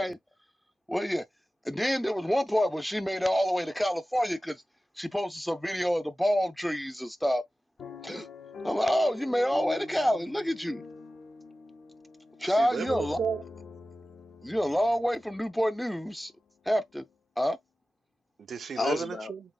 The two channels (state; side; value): normal; both; correlation 0.96